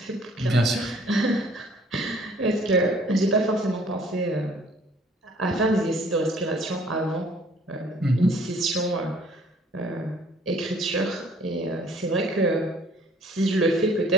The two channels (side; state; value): both; normal; correlation 0.57